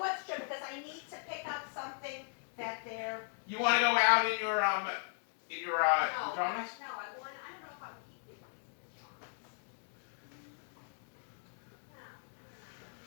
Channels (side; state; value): right; silent; digital silence